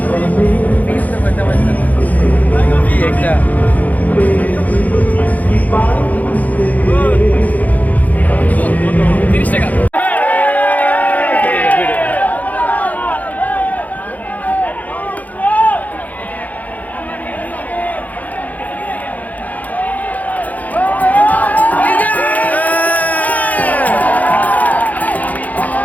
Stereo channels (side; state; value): right; late; 0.078 ms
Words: একটা 30 টাকা।